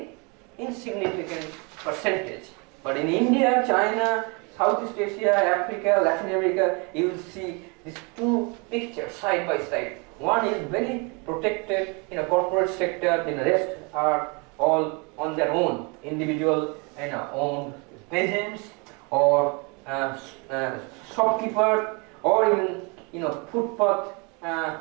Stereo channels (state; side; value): quieter; left; 31.4 dB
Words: insignificant percentage. But in India, China, Southeast Asia, Africa, Latin America, you will see these two pictures side by side. One is very protected in a corporate sector, the rest are all on their own, individual owned peasants or shopkeeper, or even footpath,